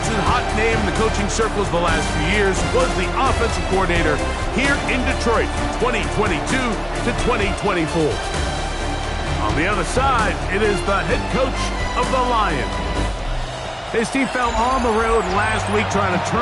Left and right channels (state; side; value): identical; both; correlation 1.00